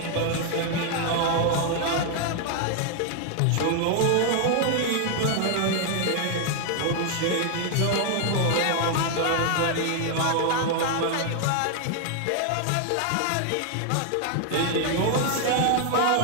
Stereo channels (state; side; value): different; both; correlation 0.00